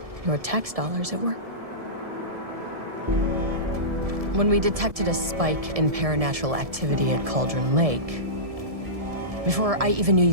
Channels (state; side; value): late; left; 1.7 ms